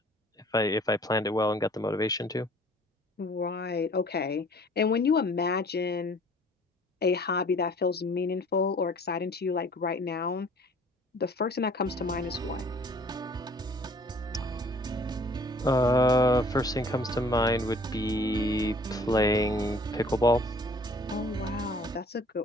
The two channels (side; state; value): both; normal; correlation 0.53